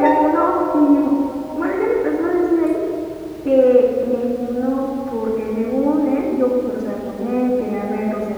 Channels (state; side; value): identical; both; correlation 1.00